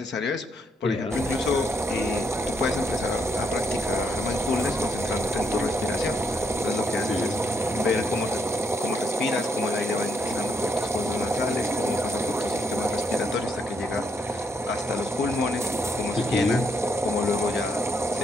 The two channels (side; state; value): both; normal; correlation 0.76